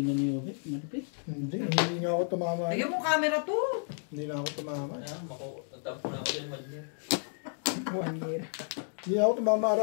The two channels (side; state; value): right; silent; 57 dB below the other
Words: na ni Obet. Malapit. Hindi nga ako tumama. Lagyan mo camera to. Hindi na ako tumama. Ayan, nagtampo na ako din, Madler. 1 year. Hindi na ako tumama,